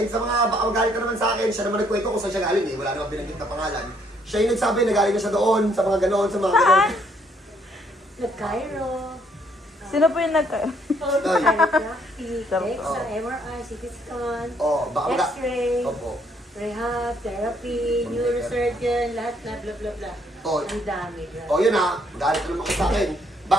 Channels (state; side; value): normal; both; correlation 0.68